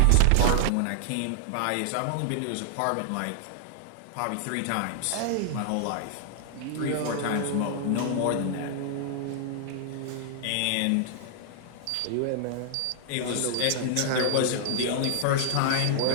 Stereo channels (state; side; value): different; both; correlation -0.01